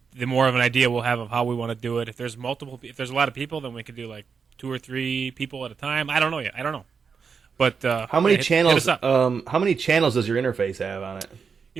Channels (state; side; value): quieter; left; 5.8 dB